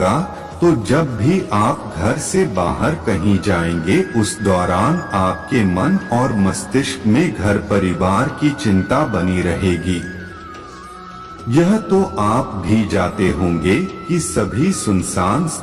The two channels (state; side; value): identical; both; correlation 1.00